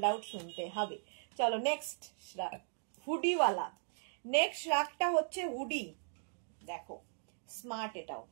আউট শুনতে হবে। চলো নেক্সট শ্রাগ, হুডিওয়ালা। নেক্সট শ্রাগটা হচ্ছে হুডি, দেখো স্মার্ট, এটাও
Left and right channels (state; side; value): silent; left; digital silence